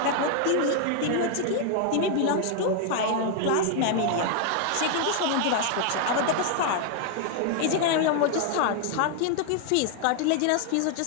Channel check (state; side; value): different; both; correlation 0.00